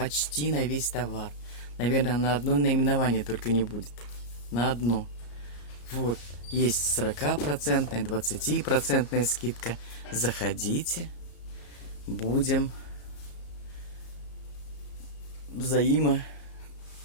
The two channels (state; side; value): late; right; 34 ms